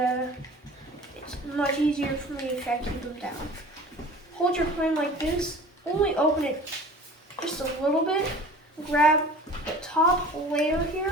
it's much easier for me if I keep them down. Hold your plane like this. Only open it just a little bit. Grab the top layer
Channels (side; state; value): both; normal; correlation 0.42